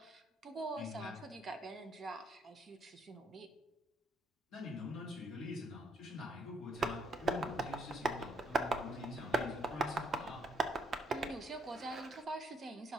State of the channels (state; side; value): normal; both; correlation 0.69